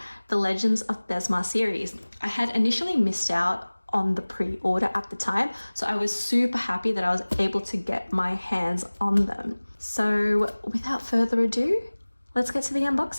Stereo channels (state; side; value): inverted; both; correlation -1.00